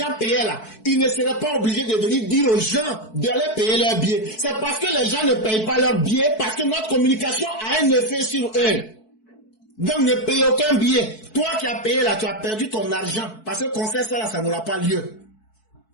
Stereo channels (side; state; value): right; late; 4.6 ms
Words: payaient là, ils ne seraient pas obligés de venir dire aux gens d'aller payer leur billet. C'est parce que les gens ne payent pas leur billet, parce que notre communication a un effet sur eux. Donc ne payez aucun billet. Toi qui as payé là, tu as perdu ton argent. Parce que le concert ça là, ça n'aura pas lieu.